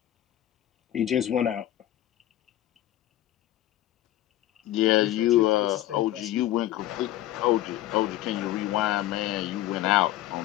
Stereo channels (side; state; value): right; quieter; 13.9 dB